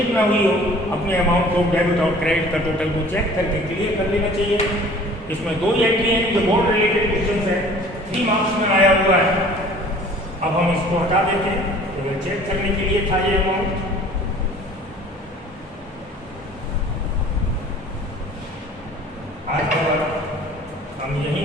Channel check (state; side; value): normal; both; correlation 0.49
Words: ना हुई हो, अपने अमाउंट को डेबिट और क्रेडिट का टोटल को चेक करके क्लियर कर लेना चाहिए। इसमें 2 एंट्री हैं जो बोर्ड रिलेटेड क्वेश्चन है, 3 मार्क्स में आया हुआ है। अब हम इसको हटा देते हैं, तो चेक करने के लिए था ये अमाउंट। आज का हम